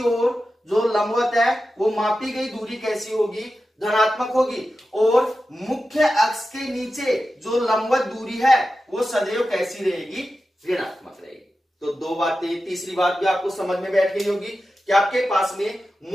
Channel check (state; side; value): normal; both; correlation 0.92